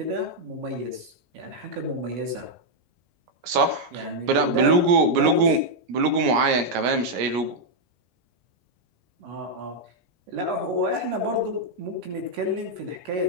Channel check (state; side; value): late; left; 17 ms